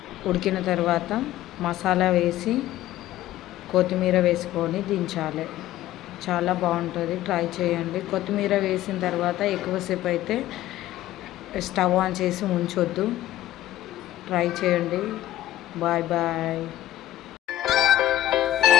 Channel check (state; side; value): quieter; right; 13.7 dB